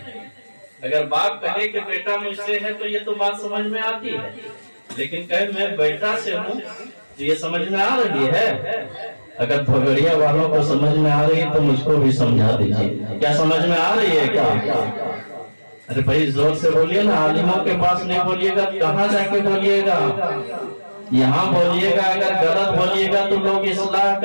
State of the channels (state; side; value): inverted; both; correlation -1.00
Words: اگر باپ کہے کہ بیٹا مجھ سے ہے تو یہ تو بات سمجھ میں آتی ہے، لیکن کہے میں بیٹا سے ہوں تو یہ سمجھ میں آ رہی ہے؟ اگر بھگڑیا والوں کو سمجھ میں آ رہی ہے تو مجھ کو بھی سمجھا دیجیے، کیا سمجھ میں آ رہی ہے کیا؟ ارے بھائی زور سے بولیے نا، عالموں کے پاس نہیں بولیے گا، کہاں جا کے بولیے گا؟ یہاں بولیے گا، اگر غلط بولیے گا تو لوگ اصلاح